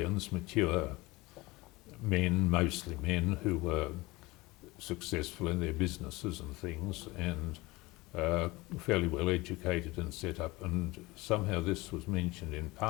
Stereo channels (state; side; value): quieter; right; 21.9 dB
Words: mature men, mostly men, who were successful in their businesses and things, and fairly well educated and set up, and somehow this was mentioned in